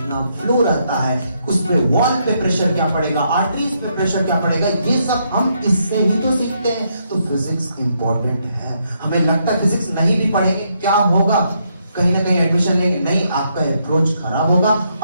फ्लो रहता है, उस पे वॉल पे प्रेशर क्या पड़ेगा, आर्टरीज पे प्रेशर क्या पड़ेगा, ये सब हम इससे ही तो सीखते हैं। तो फिजिक्स इंपॉर्टेंट है। हमें लगता है फिजिक्स नहीं भी पढ़ेंगे क्या होगा, कहीं ना कहीं एडमिशन लेंगे, नहीं, आपका अप्रोच खराब होगा,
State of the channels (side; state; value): both; inverted; correlation -0.76